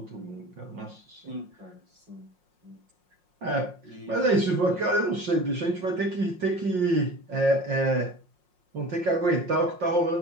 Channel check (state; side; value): late; left; 5.6 ms